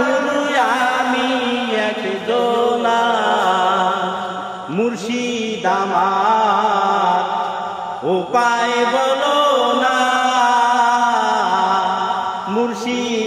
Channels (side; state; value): both; identical; correlation 1.00